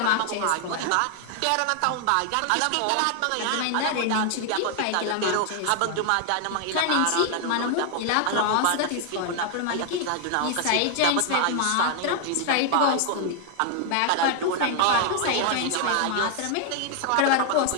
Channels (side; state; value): both; different; correlation 0.00